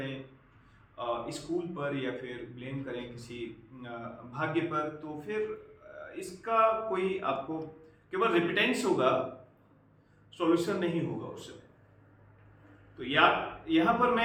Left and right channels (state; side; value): identical; both; correlation 1.00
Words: स्कूल पर, या फिर ब्लेम करें किसी भाग्य पर, तो फिर इसका कोई आपको केवल रिपिटेंस होगा, सॉल्यूशन नहीं होगा उस समय। तो यहाँ पर